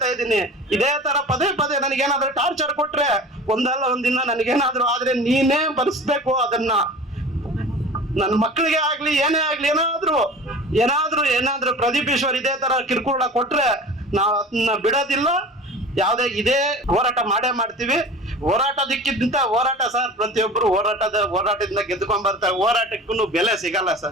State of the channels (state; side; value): normal; both; correlation 0.38